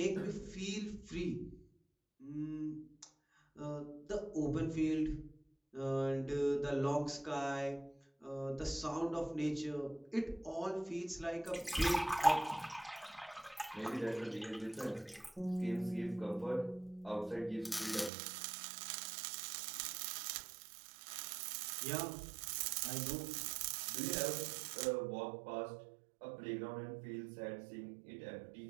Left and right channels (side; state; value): left; drops out; at 18.1 s